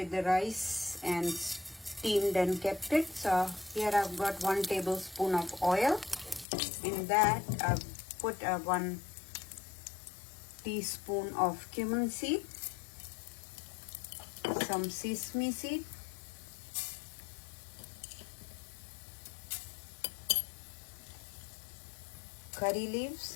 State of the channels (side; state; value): right; drops out; at 6.5 s